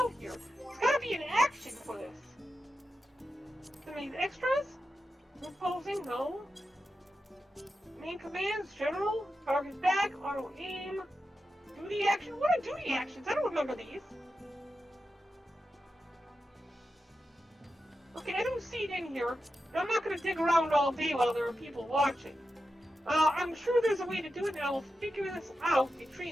here. There's gotta be an action for this. Any extras? Reposing? No. Main commands, general, target back, auto aim, duty action. What are duty actions? I don't remember these. Okay, I don't see it in here. I'm not gonna dig around all day while there are people watching. I'm sure there's a way to do it, and I'll figure this out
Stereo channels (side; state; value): both; normal; correlation 0.90